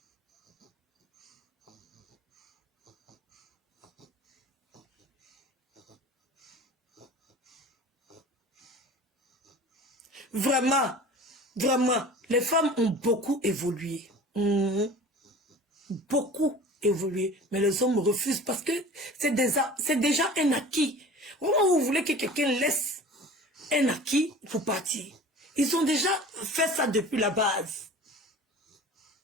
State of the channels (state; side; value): normal; both; correlation 0.40